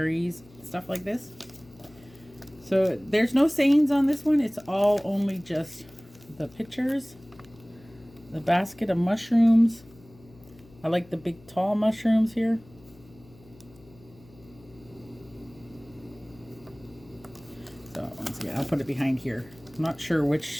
stuff like this. So there's no sayings on this one. It's all only just the pictures. The basket of mushrooms. I like the big tall mushrooms here. So once again, I'll put it behind here. I'm not sure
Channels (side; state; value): left; noise; hum, 25 dB below the sound